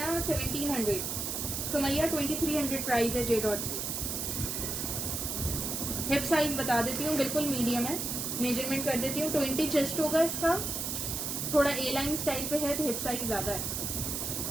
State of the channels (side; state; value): right; noise; hiss, 2 dB below the sound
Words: 1700। सुमैया 2300 प्राइस है जे डॉट की। हिप साइज बता देती हूँ, बिल्कुल मीडियम है। मेजरमेंट कर देती हूँ, 20 चेस्ट होगा इसका। थोड़ा ए लाइन स्टाइल पे है तो हिप साइज ज्यादा है।